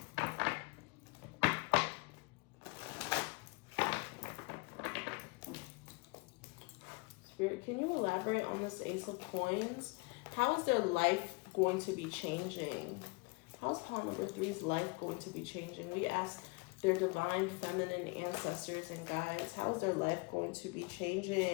Spirit, can you elaborate on this Ace of Coins? How is their life going to be changing? How is pile number 3's life going to be changing? We ask their divine feminine ancestors and guides, how is their life going to be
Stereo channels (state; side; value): quieter; right; 28.3 dB